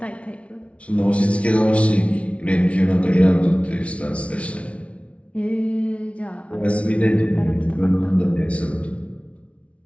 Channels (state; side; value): late; right; 0.063 ms